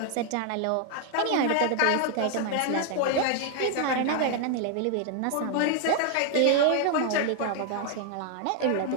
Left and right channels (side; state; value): both; different; correlation 0.00